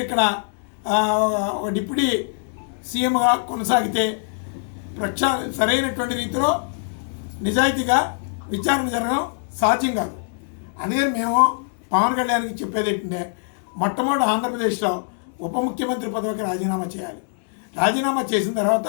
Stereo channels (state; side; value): silent; right; 61 dB below the other